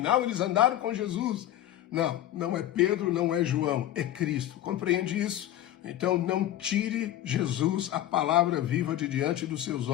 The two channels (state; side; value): quieter; right; 12.9 dB